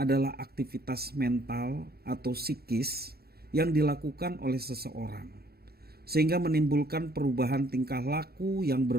aktivitas mental atau psikis yang dilakukan oleh seseorang, sehingga menimbulkan perubahan tingkah laku yang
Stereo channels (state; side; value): late; left; 0.45 ms